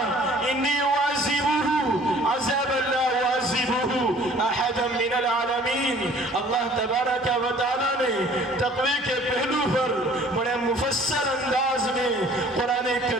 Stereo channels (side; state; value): both; normal; correlation 0.53